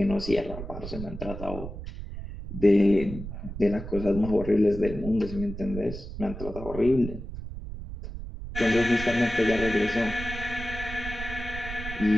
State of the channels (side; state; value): right; noise; rumble, 9 dB below the sound